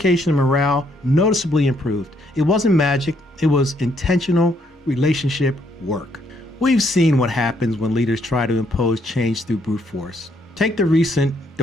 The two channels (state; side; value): normal; both; correlation 0.71